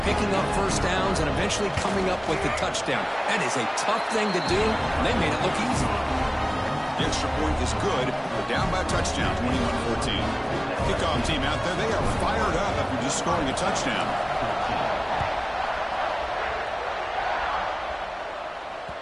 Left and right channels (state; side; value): identical; both; correlation 1.00